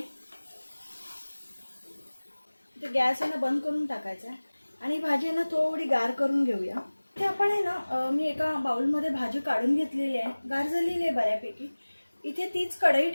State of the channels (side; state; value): both; inverted; correlation -1.00